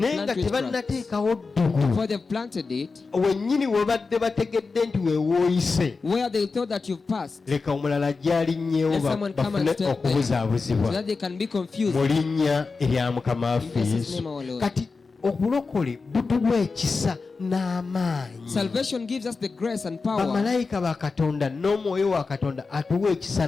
plant nga witchcraft. tebannateekawo ddogo. Before they've planted it, wennyini we badde bategedde nti weewooyise, where they thought that you've passed, leka omulala gyalinnyewo Let someone come and bafune step there, so okubuzaabuzibwa that they can be confused. mu linnya erya mukama waffe In Jesus' Yesu. name, our Lord. kati obulokole butuwa ekisa n'amaanyi. Salvation gives us the grace and power. bamalayika ba katonda n'omwoyo wa katonda atuwa ekisa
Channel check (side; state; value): right; quieter; 4.3 dB